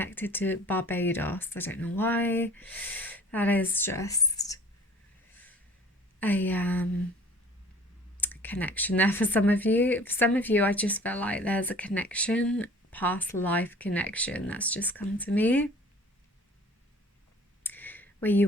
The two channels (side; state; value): both; normal; correlation 0.48